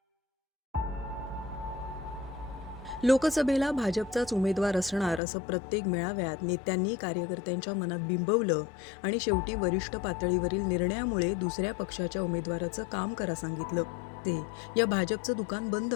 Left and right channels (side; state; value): right; drops out; at 5.2 s